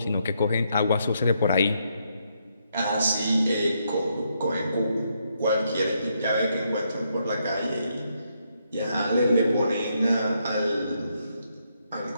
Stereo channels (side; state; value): both; inverted; correlation -0.77